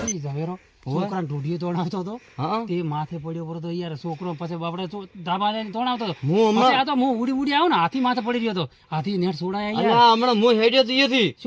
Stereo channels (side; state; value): both; identical; correlation 1.00